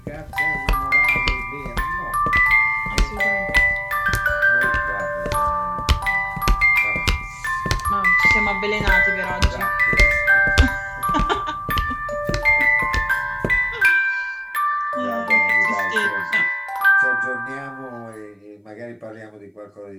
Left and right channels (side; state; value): both; identical; correlation 1.00